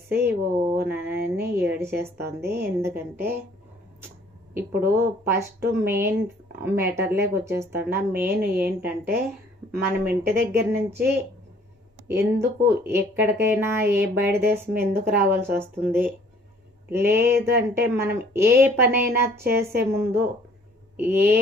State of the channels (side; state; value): both; normal; correlation 0.57